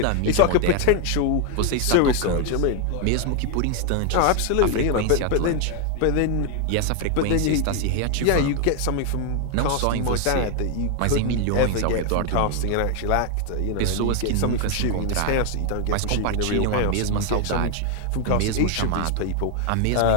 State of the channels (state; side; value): different; both; correlation 0.01